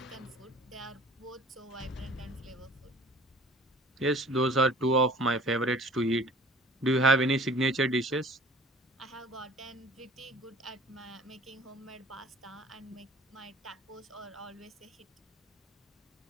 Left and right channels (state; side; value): normal; both; correlation 0.48